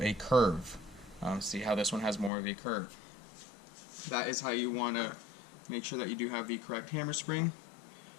a curve. See how this one has more of a curve. That is how you want to make sure that you do have the correct hammer spring.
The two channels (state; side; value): drops out; right; at 2.3 s